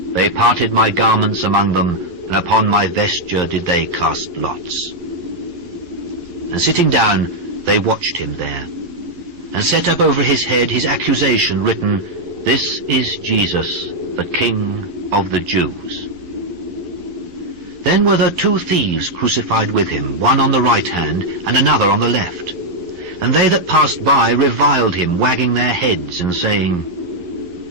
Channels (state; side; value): late; left; 11 ms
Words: They parted my garments among them, and upon my vesture did they cast lots. And sitting down, they watched him there, and set up over his head his accusation written, This is Jesus, the King of the Jews. Then were there 2 thieves crucified with him, one on the right hand, and another on the left. And they that passed by reviled him, wagging their heads, and saying,